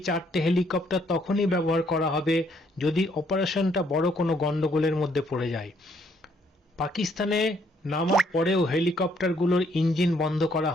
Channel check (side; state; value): both; normal; correlation 0.68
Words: 4টে হেলিকপ্টার তখনই ব্যবহার করা হবে যদি অপারেশনটা বড় কোনো গন্ডগোলের মধ্যে পড়ে যায়। পাকিস্তানে নামার পরেও হেলিকপ্টারগুলোর ইঞ্জিন বন্ধ করা